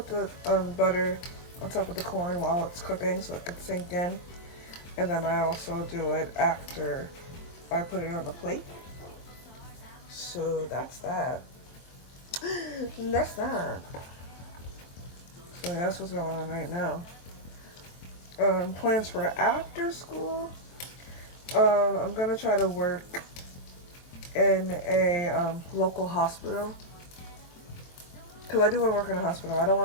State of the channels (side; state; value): right; late; 23 ms